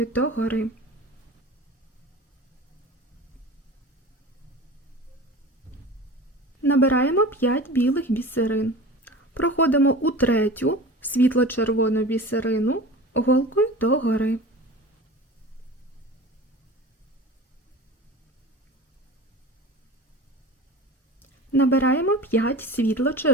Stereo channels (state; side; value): normal; both; correlation 0.35